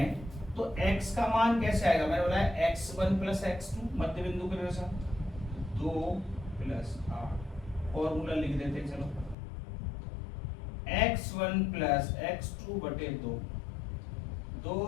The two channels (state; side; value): drops out; right; at 9.3 s